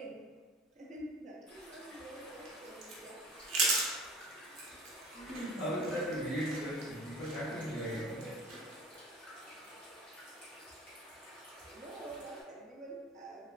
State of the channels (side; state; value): both; normal; correlation 0.43